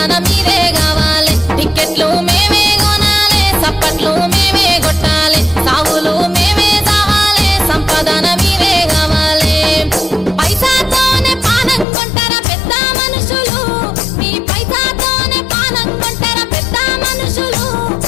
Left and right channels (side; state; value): right; drops out; at 11.9 s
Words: మీరే కావాలి టిక్కెట్లు మేమే కొనాలి సప్పట్లు మేమే కొట్టాలి సాగులు మేమే రావాలి సంపదన మీరే కావాలి పైసాతోనే పానం కొంటారా పెద్ద మనుషులు మీ పైసాతోనే పానం కొంటారా పెద్ద మనుషులు